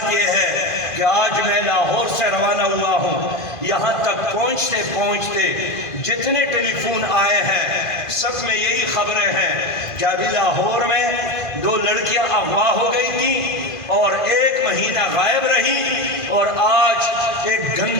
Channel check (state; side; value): late; right; 2.5 ms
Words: یہ ہے کہ آج میں لاہور سے روانہ ہوا ہوں، یہاں تک پہنچتے پہنچتے جتنے ٹیلی فون آئے ہیں سب میں یہی خبریں ہیں کہ ابھی لاہور میں 2 لڑکیاں اغوا ہو گئی تھیں اور 1 مہینہ غائب رہی، اور آج ایک